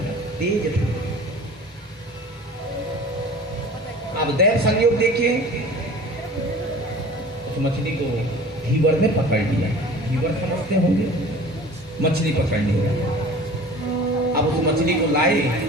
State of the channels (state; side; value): normal; both; correlation 0.42